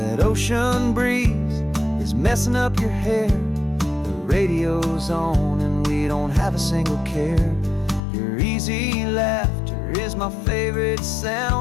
ocean breeze is messing up your hair. The radio's on and we don't have a single care. Your easy laughter is my favorite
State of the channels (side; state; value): right; drops out; at 8.0 s